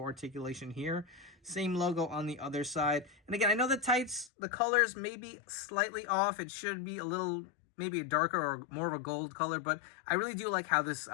articulation here. Same logo on the other side. And again, I know the tights, the colors may be slightly off. It should be a little, maybe a darker or more of a gold color, but I really do like how this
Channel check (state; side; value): drops out; right; at 4.3 s